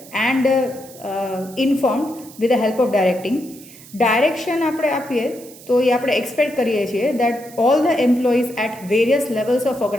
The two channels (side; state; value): right; noise; hiss, 20 dB below the sound